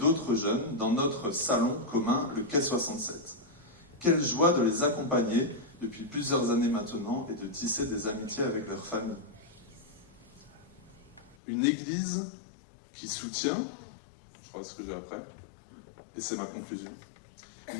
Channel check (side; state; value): right; drops out; at 11.4 s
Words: jeunes dans notre salon commun, le Quai 67. Quelle joie de les accompagner depuis plusieurs années maintenant et de tisser des amitiés avec leur famille. Une église qui soutient, je crois ce que j'ai après, et c'est ma conclusion.